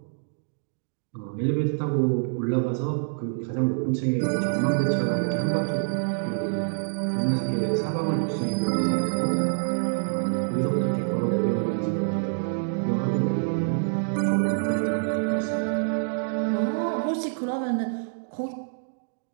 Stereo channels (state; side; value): silent; left; digital silence